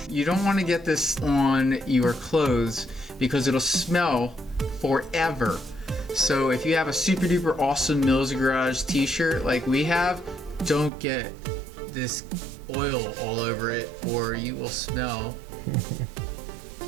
You don't want to get this on your clothes because it'll smell forever. So if you have a super duper awesome Mills Garage t-shirt like we have, don't get this oil all over it or you will smell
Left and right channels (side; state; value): left; drops out; at 10.9 s